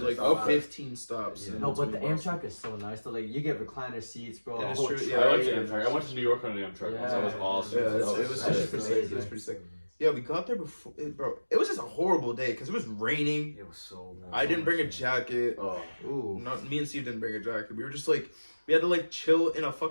like Okay. 15 stops. Yeah. in No, but the between Boston. Amtrak is so nice. So like you get recliner seats, bro. Yeah, a it's whole true, train. yeah, I like the Amtrak. I went to New York on an Amtrak once. That was Yeah. awesome. Yeah, That it was was sick. pretty sick. It was pretty sick. Yeah, we got there before, bro. It was just a horrible day because it was raining. It was so I didn't bring a jacket. Oh, Ooh. Not me and Steve didn't bring a jacket. We were just like, we had to like chill in a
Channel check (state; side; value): inverted; both; correlation -1.00